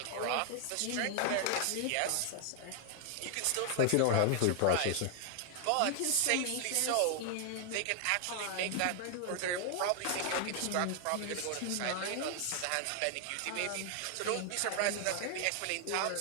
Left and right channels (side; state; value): both; different; correlation 0.00